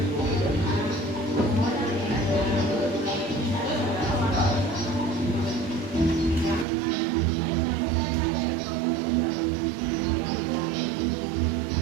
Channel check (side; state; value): left; drops out; at 6.7 s